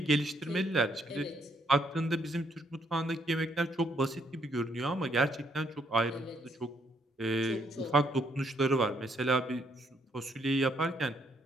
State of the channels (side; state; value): both; normal; correlation 0.71